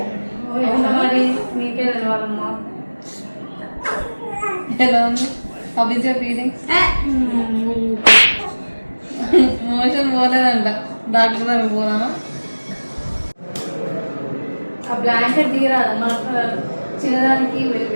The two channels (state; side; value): inverted; both; correlation -1.00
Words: మరి నీకే తెలవాలమ్మా. ఎలా ఉంది? How is your feeling? Motion పోలేదంట, డాక్టర్ దగ్గర పోదామా? ఆ బ్లాంకెట్ దిగరాదమ్మా, చిన్నదానికి